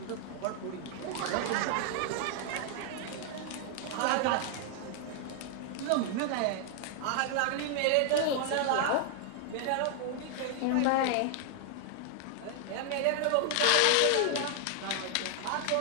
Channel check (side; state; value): both; different; correlation 0.00